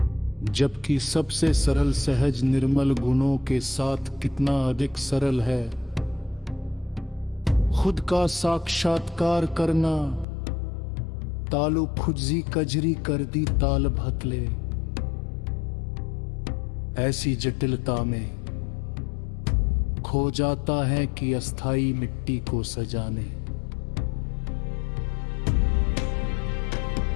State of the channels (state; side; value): drops out; right; at 10.2 s